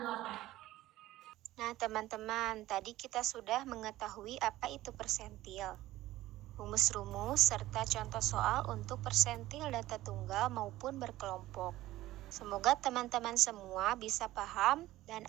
Nah, teman-teman, tadi kita sudah mengetahui apa itu persentil, rumus-rumus, serta contoh soal untuk persentil data tunggal maupun berkelompok. Semoga teman-teman semua bisa paham dan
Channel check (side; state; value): left; quieter; 15.9 dB